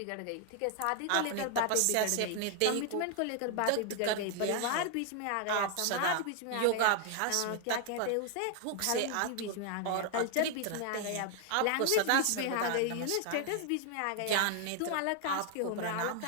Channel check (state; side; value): different; both; correlation 0.00